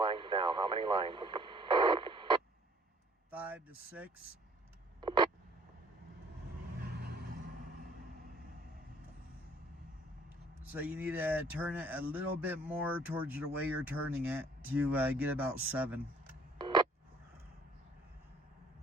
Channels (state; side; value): normal; both; correlation 0.58